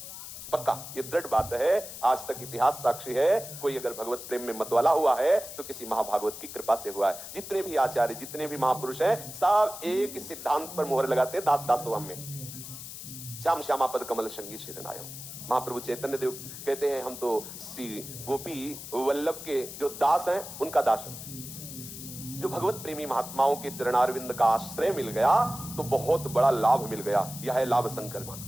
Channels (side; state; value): left; noise; hiss, 11 dB below the sound